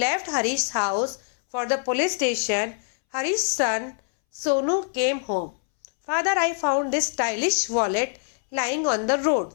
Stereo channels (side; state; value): right; silent; 62 dB below the other